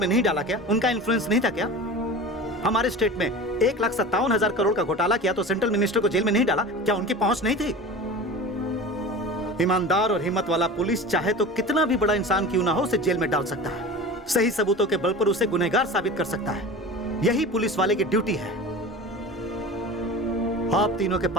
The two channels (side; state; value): both; normal; correlation 0.34